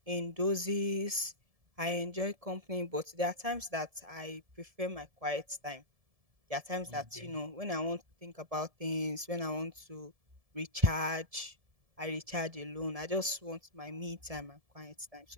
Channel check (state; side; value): late; left; 1.7 ms